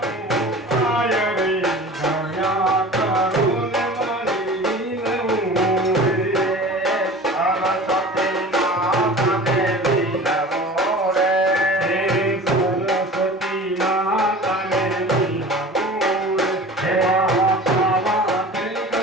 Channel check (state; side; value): normal; both; correlation 0.39